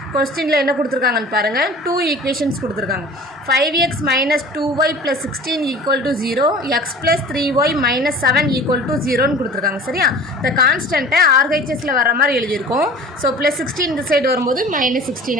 கொஸ்டினில் என்ன கொடுத்துருக்காங்கன்னு பாருங்கள். 2 equations கொடுத்துருக்காங்க. 5x minus 2y plus 16 equal to 0, x plus 3y minus 7 equal to 0ன்னு கொடுத்துருக்காங்க. சரியா? இந்த கான்ஸ்டன்ட்டை RHSல வர மாதிரி எழுதியிருக்கோம். ஸோ ப்ளஸ் 16 இந்த சைடு வரும்போது மைனஸ் 16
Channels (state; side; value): normal; both; correlation 0.42